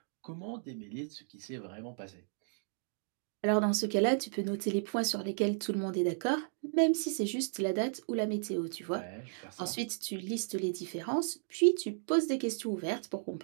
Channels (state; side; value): silent; left; digital silence